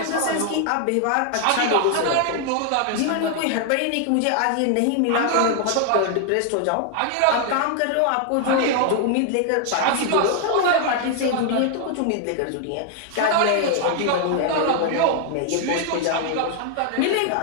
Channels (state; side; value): different; both; correlation 0.00